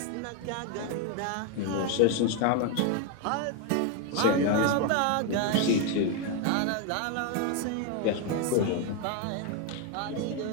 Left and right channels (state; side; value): different; both; correlation 0.01